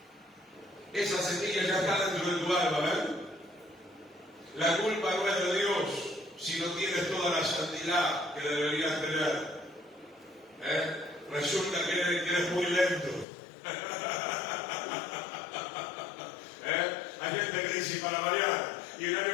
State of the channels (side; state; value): right; drops out; at 13.2 s